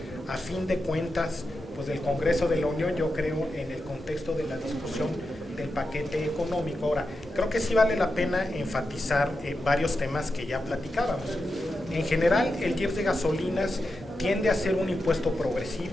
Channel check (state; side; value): normal; both; correlation 0.89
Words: a fin de cuentas pues del Congreso de la Unión, yo creo, en el contexto de la discusión del paquete económico. Ahora, creo que sí vale la pena enfatizar varios temas que ya platicábamos. En general, el IEPS de gasolinas tiende a ser un impuesto